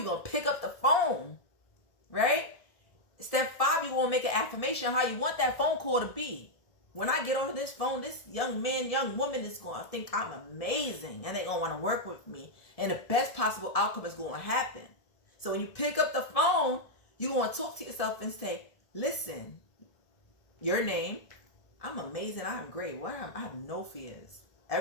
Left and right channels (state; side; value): late; right; 1.7 ms